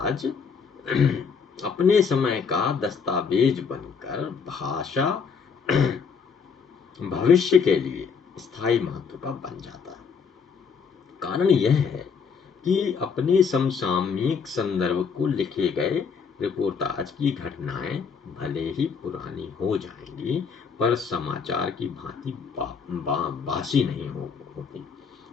अपने समय का दस्तावेज बनकर भाषा भविष्य के लिए स्थायी महत्व का बन जाता है। कारण यह है कि अपने समसामयिक संदर्भ को लिखे गए रिपोर्टाज की घटनाएं भले ही पुरानी हो जाएंगी, पर समाचार की भांति बासी नहीं होती।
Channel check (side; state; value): right; quieter; 5.9 dB